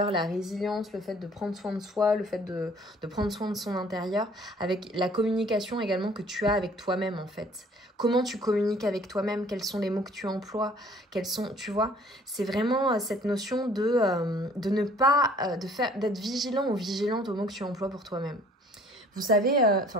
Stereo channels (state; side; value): normal; both; correlation 0.55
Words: la résilience, le fait de prendre soin de soi, le fait de prendre soin de son intérieur, avec la communication également que tu as avec toi-même en fait. Comment tu communiques avec toi-même, quels sont les mots que tu emploies, tu vois, c'est vraiment cette notion de ne pas, d'être vigilant ou vigilante aux mots que tu emploies pour toi-même. Vous savez,